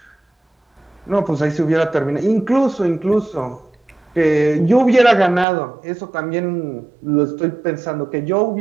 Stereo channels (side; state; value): left; drops out; at 5.5 s